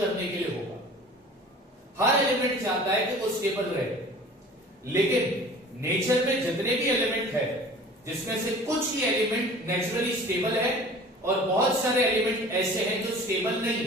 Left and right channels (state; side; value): normal; both; correlation 0.44